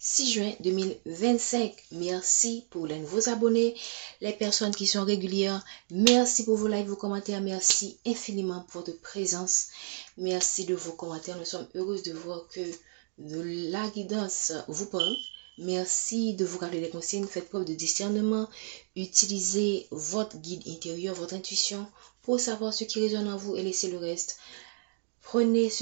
juin 2025. Merci pour les nouveaux abonnés, les personnes qui sont régulières. Merci pour vos likes, vos commentaires. Merci infiniment pour votre présence. Merci de vos commentaires. Nous sommes heureux de voir que la guidance vous parle. Merci de vous garder les consignes. Faites preuve de discernement. Utilisez votre guide intérieur, votre intuition pour savoir ce qui résonne en vous et laissez le reste. Prenez ce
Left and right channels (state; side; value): silent; left; digital silence